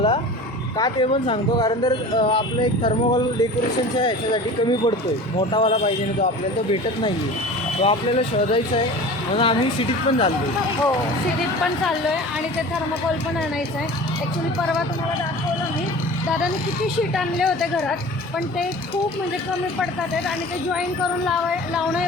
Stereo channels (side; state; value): both; normal; correlation 0.38